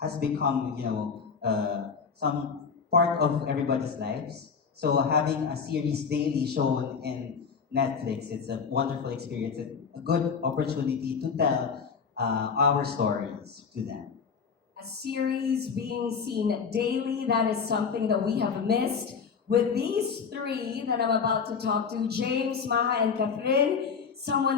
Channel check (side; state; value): right; quieter; 5.9 dB